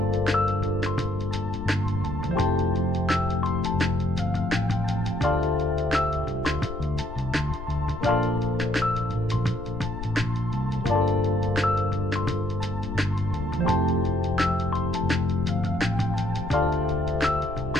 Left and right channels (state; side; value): noise; left; rumble, 8 dB below the sound